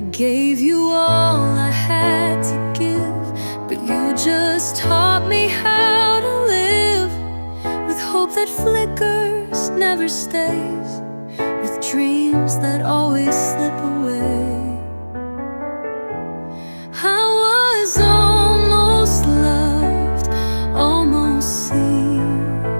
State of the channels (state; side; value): inverted; both; correlation -1.00